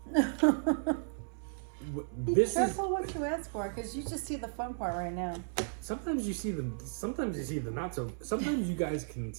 Be This is careful what you ask for, because you just see the fun part right now. sometimes you see the not so. Sometimes you guys can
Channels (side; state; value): left; silent; 55 dB below the other